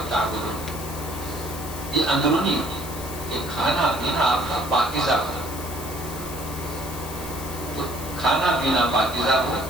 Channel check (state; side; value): noise; left; hiss, 11 dB below the sound